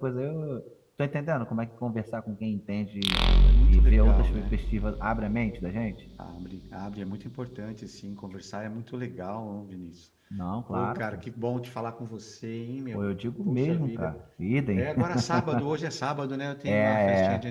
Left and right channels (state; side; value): identical; both; correlation 1.00